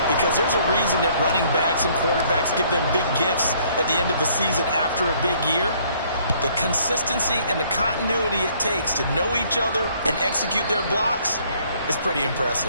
because there's a reason that running backs and quarterbacks give them big gifts at the end of the season after a big year. The consistency and the continuity it takes to know each other and execute their blocks is pretty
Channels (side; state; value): both; inverted; correlation -0.62